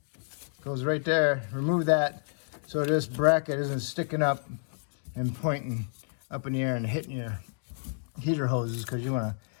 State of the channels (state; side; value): silent; right; digital silence